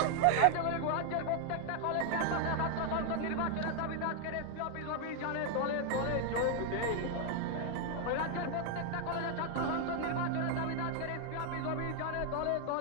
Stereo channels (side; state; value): both; different; correlation 0.00